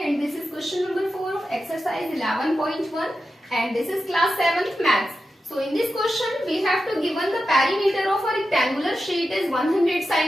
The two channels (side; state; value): both; normal; correlation 0.90